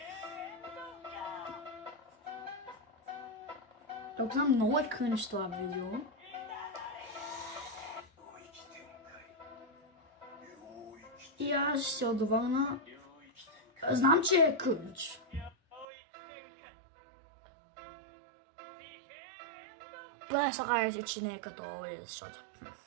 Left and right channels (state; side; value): drops out; left; at 15.9 s